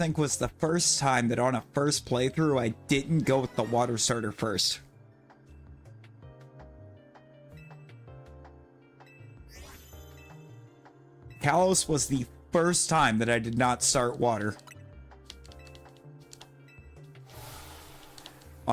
was the first time that on a first playthrough I didn't go with the water starter first. Kalos was the first time that I did not start water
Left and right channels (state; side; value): identical; both; correlation 1.00